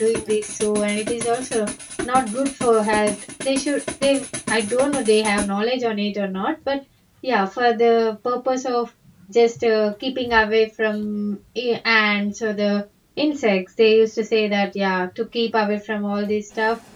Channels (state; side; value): identical; both; correlation 1.00